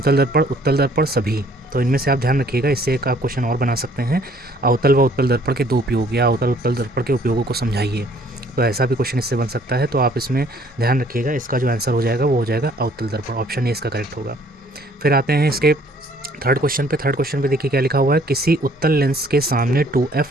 दर्पण, उत्तल दर्पण, सभी। तो इनमें से आप ध्यान रखिएगा, इससे एक आप क्वेश्चन और बना सकते हैं, अवतल व उत्तल दर्पण के 2 उपयोग या अवतल उत्तल दर्पण के उपयोगों को समझाइए। तो ऐसा भी क्वेश्चन इससे बन सकता है। तो आप इसमें ध्यान रखिएगा, इसका जो आंसर हो जाएगा वो हो जाएगा अवतल दर्पण। ऑप्शन ए इसका करेक्ट होगा। फिर आते हैं इसके थर्ड क्वेश्चन पे। थर्ड क्वेश्चन पे देखिए क्या लिखा हुआ है, किसी उत्तल लेंस के सामने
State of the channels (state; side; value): normal; both; correlation 0.60